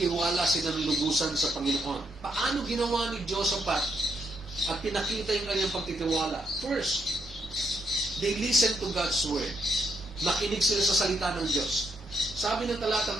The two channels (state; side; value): normal; both; correlation 0.77